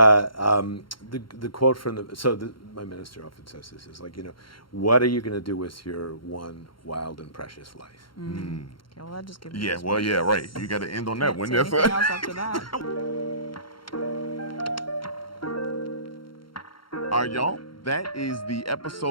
quote from my minister often says this is like, what are you going to do with your one wild and precious life? Okay, well, that just gives me Yeah, goosebumps. well, yeah, right. You got to end on that one. Can't That's say anything else after that. All right, y'all. That is the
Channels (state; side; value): late; right; 0.73 ms